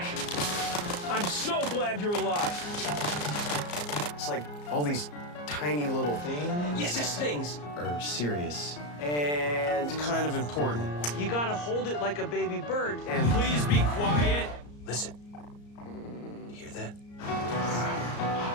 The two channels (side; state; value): right; late; 34 ms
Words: I'm so glad you're alive. It's like all these tiny little things... Yes, things. ...are serious and kind of important. You gotta hold it like a baby bird. And... Please be quiet. Listen. You hear that?